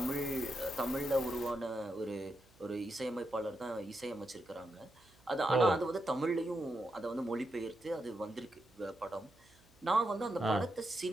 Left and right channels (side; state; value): right; noise; hum, 29 dB below the sound